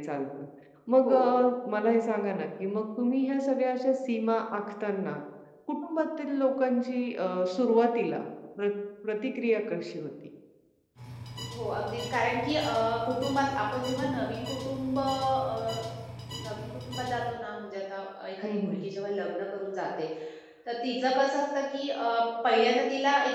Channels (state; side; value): identical; both; correlation 1.00